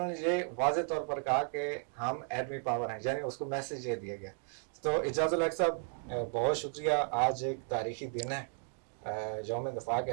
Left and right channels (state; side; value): silent; left; 55 dB below the other